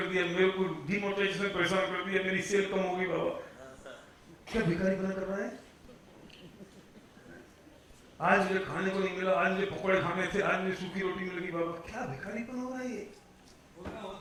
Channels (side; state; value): both; identical; correlation 1.00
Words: दिया, मेरे को डिमोनेटाइजेशन ने परेशान कर दिया, मेरी सेल कम हो गई बाबा। क्या भिखारी बना कर रहा है? आज मुझे खाने को नहीं मिला, आज मुझे पकौड़े खाने थे, आज मुझे सूखी रोटी मिल गई बाबा। क्या भिखारी बना हो रहा है ये?